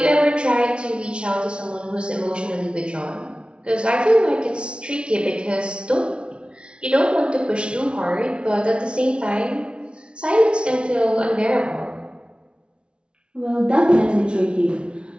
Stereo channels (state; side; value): late; left; 0.057 ms